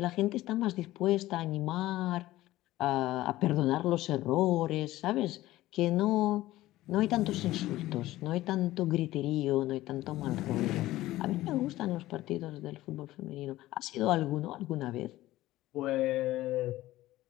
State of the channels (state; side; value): quieter; right; 16.3 dB